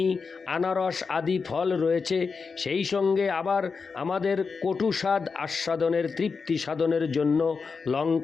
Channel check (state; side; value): quieter; right; 5.0 dB